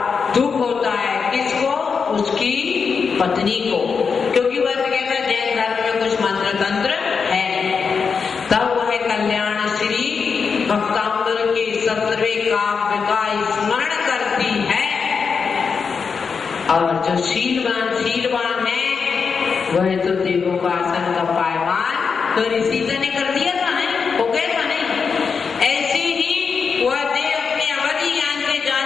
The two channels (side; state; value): right; quieter; 5.7 dB